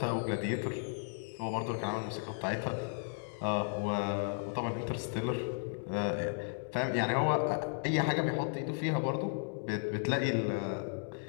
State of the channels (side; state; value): right; silent; digital silence